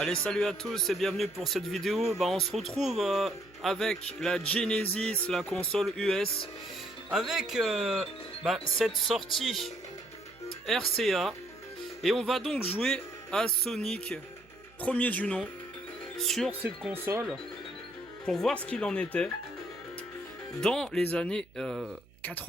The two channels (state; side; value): noise; right; hum, 27 dB below the sound